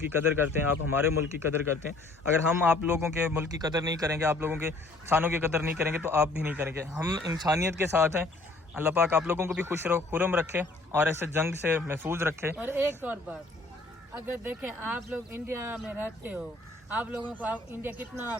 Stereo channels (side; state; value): right; quieter; 3.1 dB